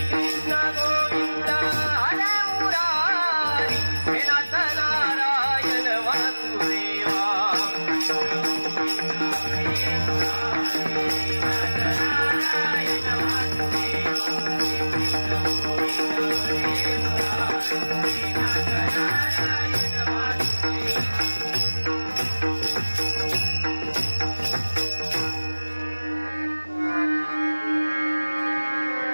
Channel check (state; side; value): inverted; both; correlation -1.00